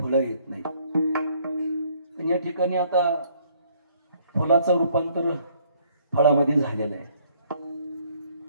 येत नाही. पण या ठिकाणी आता फुलाचं रूपांतर फळामध्ये झालेलं आहे.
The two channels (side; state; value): both; inverted; correlation -0.63